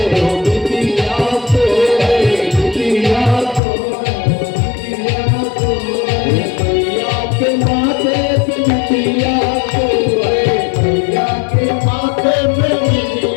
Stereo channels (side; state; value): right; drops out; at 3.6 s